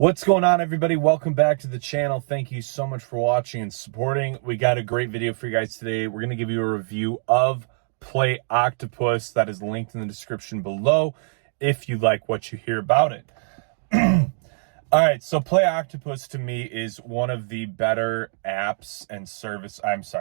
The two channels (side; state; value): left; silent; 63 dB below the other